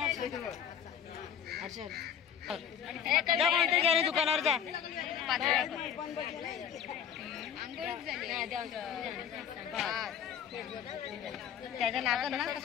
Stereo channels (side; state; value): right; quieter; 8.5 dB